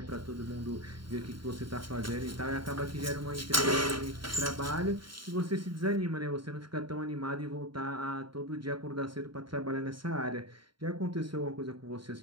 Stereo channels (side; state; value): left; late; 0.73 ms